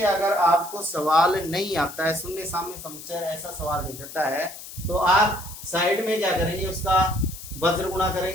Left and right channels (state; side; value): noise; left; hiss, 13 dB below the sound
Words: अगर आपको सवाल नहीं आता है, शून्य साम्य समुच्चय ऐसा सवाल दे देता है, तो आप साइड में क्या करेंगे, उसका वज्र गुणा